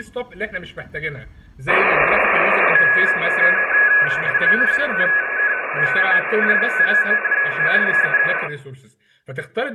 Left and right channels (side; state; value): both; identical; correlation 1.00